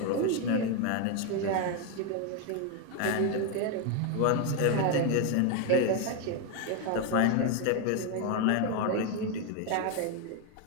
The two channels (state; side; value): different; both; correlation 0.01